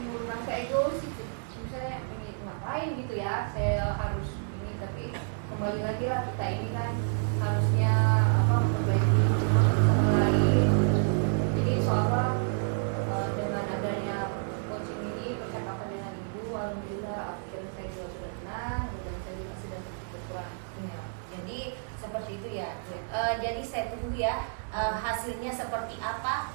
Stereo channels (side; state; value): left; silent; digital silence